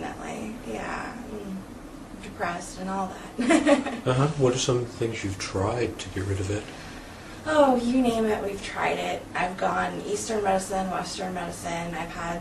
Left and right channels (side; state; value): both; identical; correlation 1.00